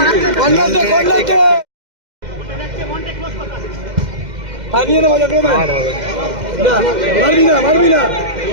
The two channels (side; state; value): left; late; 2.1 ms